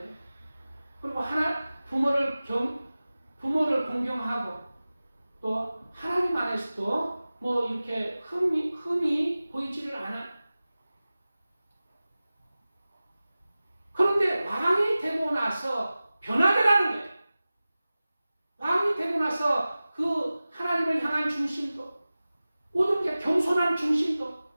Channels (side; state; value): both; inverted; correlation -0.97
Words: 그리고 부모를 공경하고 또 하나님 안에서도 뭐 이렇게 흠이 보이지를 않아. 그런데 왕이 되고 나서 변하더라는 거예요. 왕이 되고 나서 그 하나님을 향한 중심도 모든 게 겸손한 중심도